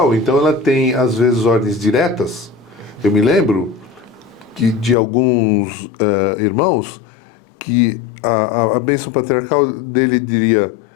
então, ela tem, às vezes, ordens diretas. Eu me lembro de alguns irmãos que a bênção patriarcal dele diria:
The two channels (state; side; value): drops out; right; at 5.0 s